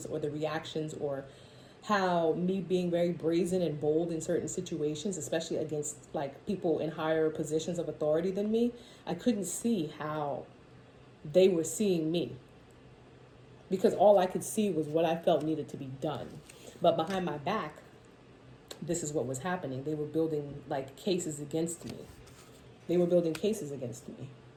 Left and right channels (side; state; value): both; identical; correlation 1.00